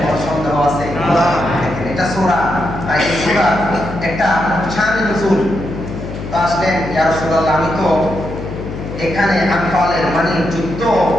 সন্দেহ আছে? এটা সূরা, এই সূরা একটা শান নজুল। তো আসলেন ইয়া রাসূলুল্লাহ, আমি তো এখানে আনফালের মানে যুদ্ধ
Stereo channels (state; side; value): noise; left; hum, 9 dB below the sound